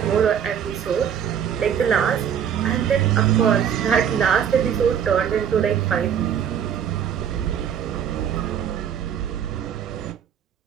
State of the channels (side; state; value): left; quieter; 8.5 dB